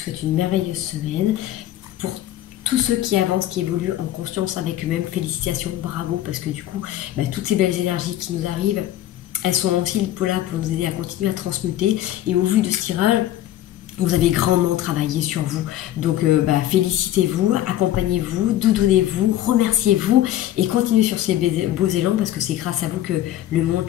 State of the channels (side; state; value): right; quieter; 13.0 dB